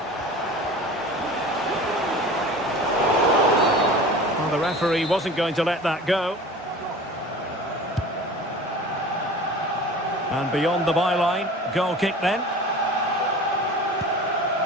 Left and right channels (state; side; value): normal; both; correlation 0.39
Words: Well, the referee wasn't going to let that go. And beyond the byline, goal kick then.